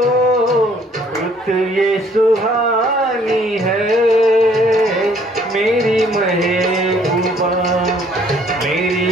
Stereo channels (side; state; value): both; normal; correlation 0.61